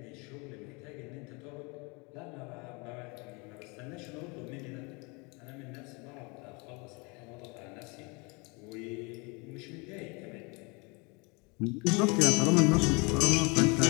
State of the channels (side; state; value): right; quieter; 29.6 dB